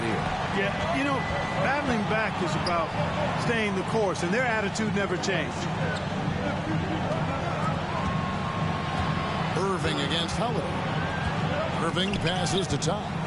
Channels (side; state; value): both; identical; correlation 1.00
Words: here. Yeah, you know, battling back is about staying the course, and their attitude never changed. Irving against Holiday. Irving passes to Tom.